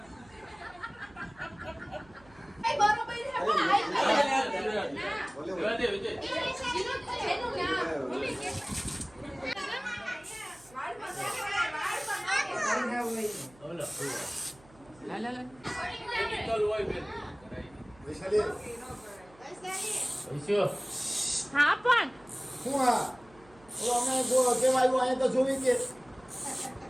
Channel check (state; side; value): noise; right; hum, 26 dB below the sound